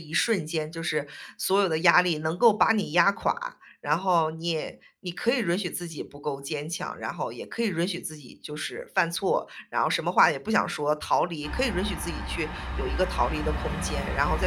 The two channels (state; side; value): identical; both; correlation 1.00